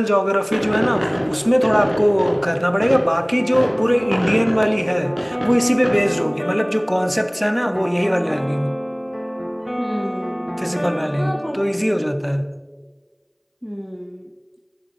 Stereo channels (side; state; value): both; identical; correlation 1.00